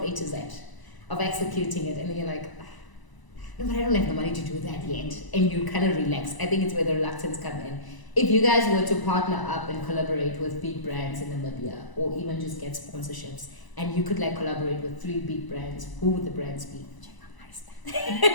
A to Z of executing it, and then you're like, no, but I don't have the money to do that yet. And you kind of relax. I think it's where the reluctance come in. If you guys were to partner up and collaborate with big brands in Namibia, or even just get sponsorships, and you could like collaborate with 3 big brands, who would the brands be?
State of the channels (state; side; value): late; right; 1.0 ms